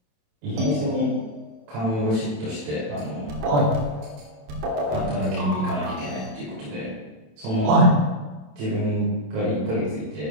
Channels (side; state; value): left; late; 27 ms